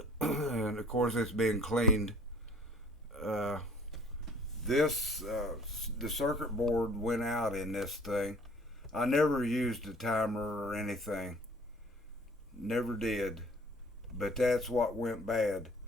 And of course it's been cleaned. Uh, the circuit board went out in this thing. I never used a timer or anything. Never did. But that's what went bad.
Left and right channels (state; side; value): normal; both; correlation 0.53